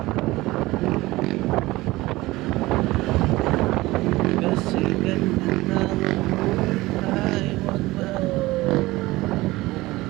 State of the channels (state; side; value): quieter; left; 19.2 dB